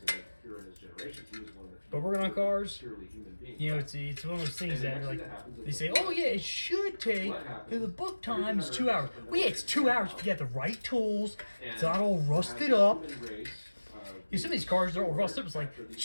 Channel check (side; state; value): both; inverted; correlation -1.00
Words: But working on cars, you know, it's one of those things that like they say, oh yeah, it should take, the book time is 2 hours. Well, yeah, it's 2 hours if you have the right tools. It's not all rusted up. You see some of these cars, they're all rusted up. It's like,